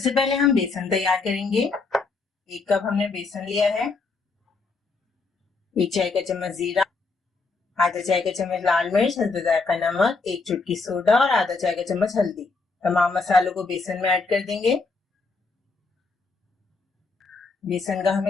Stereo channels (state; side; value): quieter; right; 4.1 dB